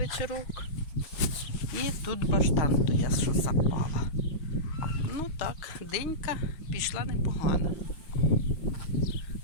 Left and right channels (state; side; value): late; right; 6.4 ms